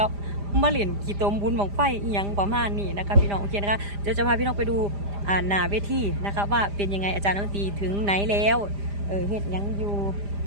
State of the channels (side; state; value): left; late; 5.0 ms